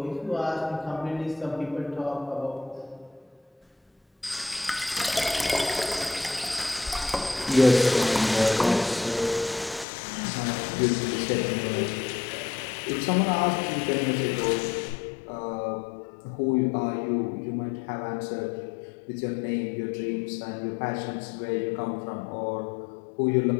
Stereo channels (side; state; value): right; drops out; at 9.9 s